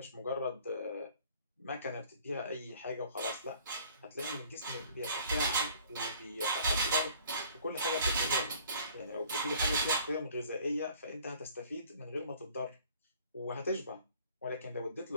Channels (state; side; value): inverted; both; correlation -0.54